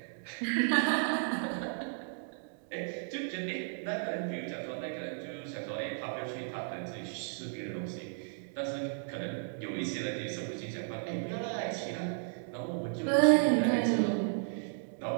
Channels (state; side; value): silent; left; digital silence